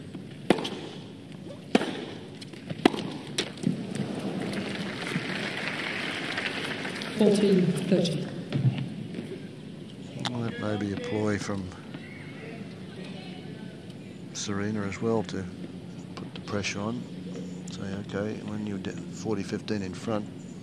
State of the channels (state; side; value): identical; both; correlation 1.00